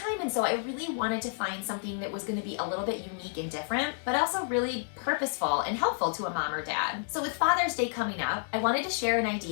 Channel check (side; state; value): right; silent; digital silence